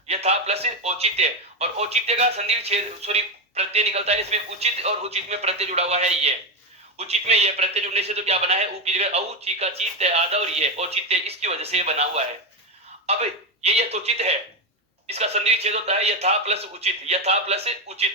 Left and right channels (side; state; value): both; normal; correlation 0.11